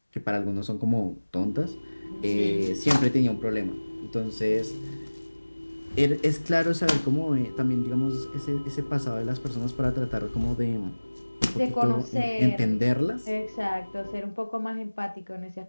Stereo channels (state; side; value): inverted; both; correlation -1.00